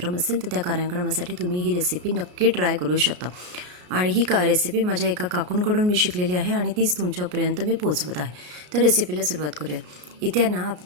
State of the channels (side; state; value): left; late; 33 ms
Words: असेल तर त्या कार्यक्रमासाठी तुम्ही ही रेसिपी नक्की ट्राय करू शकता। आणि ही रेसिपी माझ्या एका काकूंकडून मी शिकलेली आहे आणि तीच तुमच्यापर्यंत मी पोहोचवत आहे। तर रेसिपीला सुरुवात करूया। इथे ना